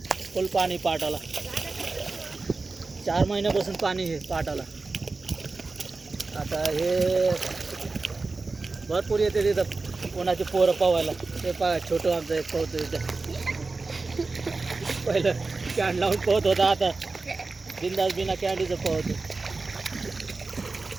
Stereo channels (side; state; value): left; quieter; 3.8 dB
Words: फुल पाणी पाटाला. 4 महिन्यापासून पाणी हे पाटाला. आता हे भरपूर येते तिथं कोणाचे पोरं पोहायला. ते छोटं आमचं एक पोहतो तिथं. पहिलं कॅन लावून पोहत होता, आता बिंदास बिना कॅन्डीचं पोहतो.